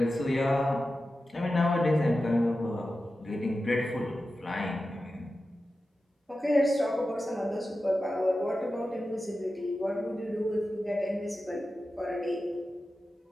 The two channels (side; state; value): both; normal; correlation 0.93